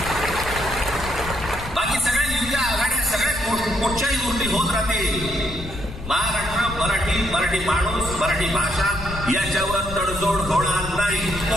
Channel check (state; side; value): noise; left; rumble, 10 dB below the sound